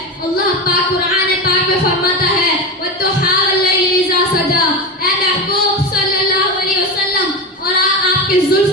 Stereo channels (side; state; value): both; normal; correlation 0.20